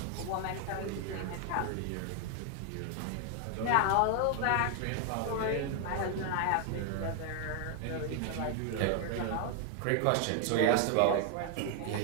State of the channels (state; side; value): different; both; correlation 0.00